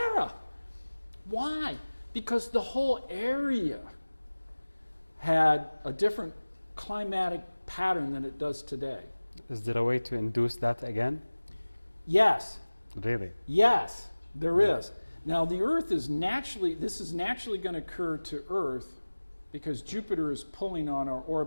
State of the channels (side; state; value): both; inverted; correlation -1.00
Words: Why? Because the whole area had a different climatic pattern than it does today. Is there a way to induce that again? Yes. Really? Yes, there is. Now the Earth is this is naturally going to occur to Earth because Jupiter is pulling on our